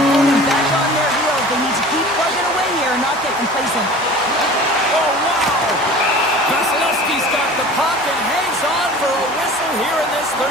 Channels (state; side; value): noise; right; hum, 24 dB below the sound